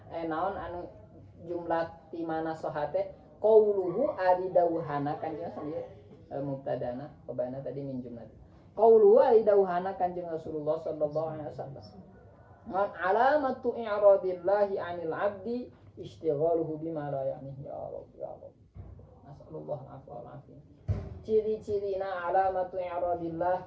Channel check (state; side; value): identical; both; correlation 1.00